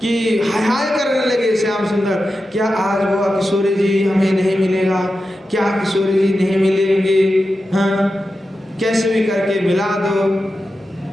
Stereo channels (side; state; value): both; normal; correlation 0.91